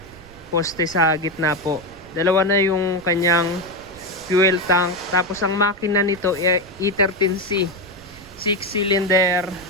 poste sa gitna po. Dalawa na yung kanyang fuel tank. Tapos ang makina nito E13C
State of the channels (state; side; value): noise; right; rumble, 22 dB below the sound